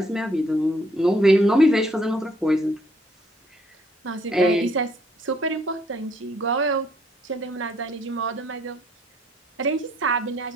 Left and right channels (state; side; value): normal; both; correlation 0.65